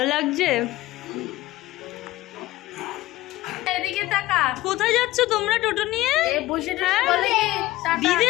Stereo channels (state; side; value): quieter; right; 17.2 dB